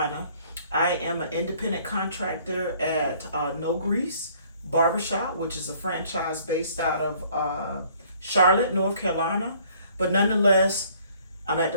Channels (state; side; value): inverted; both; correlation -0.58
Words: I am an independent contractor at No Grease Barbershop, which is a franchise based out of Charlotte, North Carolina. But nonetheless, I'm at